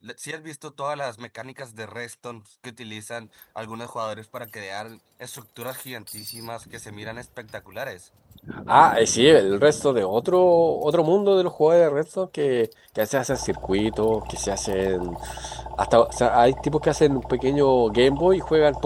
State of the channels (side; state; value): both; identical; correlation 1.00